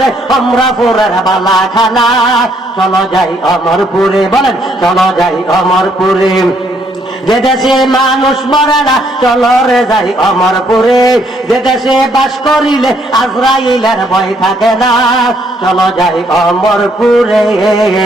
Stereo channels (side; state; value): both; normal; correlation 0.69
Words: আমরা ফুরার বালা খানা। চলো যাই অমরপুরে। বলেন, চলো যাই অমরপুরে, যে দেশে মানুষ মরে না, চলো রে যাই অমরপুরে। যে দেশে বাস করিলে আজরাইলের ভয় থাকে না, চলো যাই অমরপুরে।